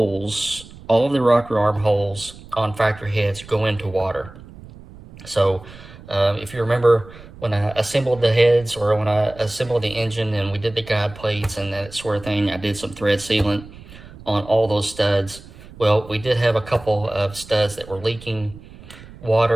all of the rocker arm holes on factory heads go into water. So if you remember when I assembled the heads, or when I assembled the engine and we did the guide plates and that sort of thing, I did some thread sealant on all those studs. Well, we did have a couple of studs that were leaking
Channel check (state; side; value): noise; right; rumble, 18 dB below the sound